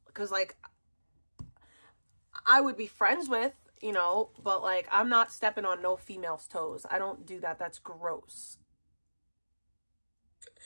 because like I would be friends with you know, but like, I'm not stepping on no female's toes. I don't do that. That's gross.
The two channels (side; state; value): both; inverted; correlation -1.00